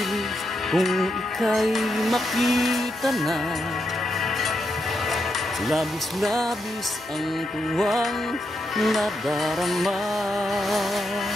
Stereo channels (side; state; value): left; noise; hum, 28 dB below the sound